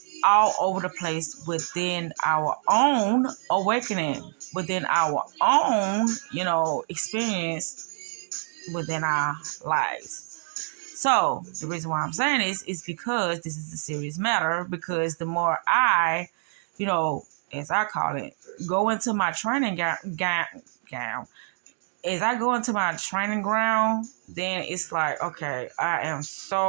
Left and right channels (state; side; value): silent; left; digital silence